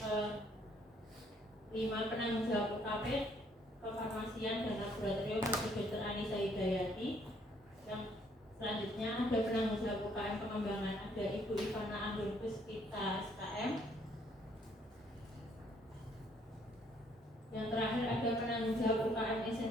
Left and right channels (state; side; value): normal; both; correlation 0.66